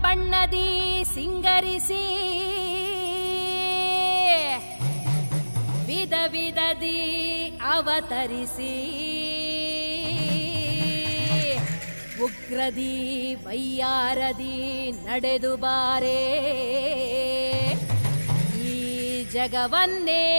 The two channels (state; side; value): inverted; both; correlation -1.00